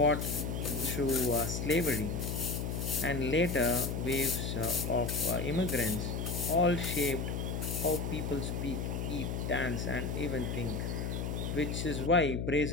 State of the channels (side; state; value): left; noise; hum, 2 dB below the sound